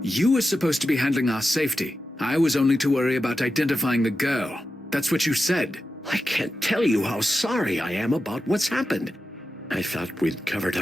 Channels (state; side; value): normal; both; correlation 0.90